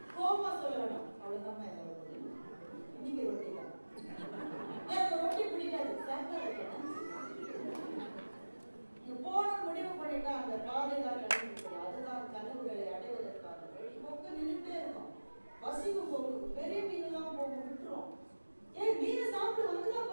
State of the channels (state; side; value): inverted; both; correlation -1.00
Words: கோபமா சொல்ல வேணாம். அவ்வளவுதான் என்னோட முடியும். இன்னைக்கு ரொட்டி தான். எனக்கு ரொட்டி பிடிக்காது, சாப்பிட வைக்கணும். நீங்க போன முடிவு பண்ணிட்டா அந்த பாதை தான் கிடைக்கும். அதுதான் கனவுகளை அடைவதற்கான வழி. கொக்கு நின்றுட்டே இருக்கும். பசிக்கு கொக்கு பெரிய மீன் எல்லாம் போக விட்டுரும். ஏன் மீனை சாப்பிட்டு வந்துதான்